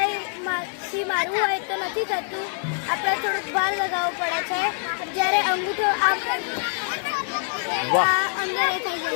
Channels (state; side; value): silent; right; 62 dB below the other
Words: મારવું હોય તો નથી થતું. આપણે થોડુંક ભાર લગાવવું પડે છે. જ્યારે અંગૂઠો આમ વાહ. આ અંદર એ થઈ